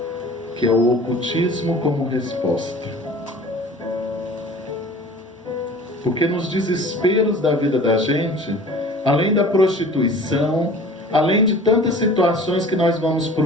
que é o ocultismo como resposta. Porque nos desesperos da vida da gente, além da prostituição, além de tantas situações que nós vamos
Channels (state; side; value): normal; both; correlation 0.44